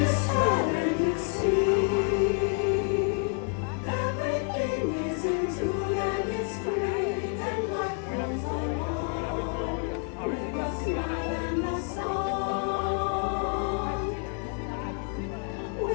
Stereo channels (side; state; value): right; quieter; 39.1 dB